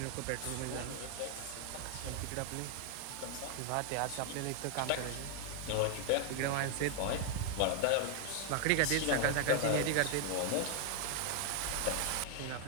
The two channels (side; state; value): both; different; correlation 0.00